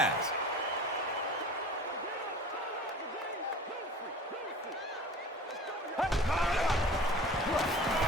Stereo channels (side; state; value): both; normal; correlation 0.41